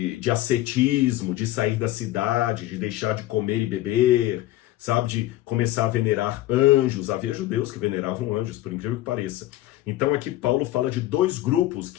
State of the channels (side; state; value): right; quieter; 15.5 dB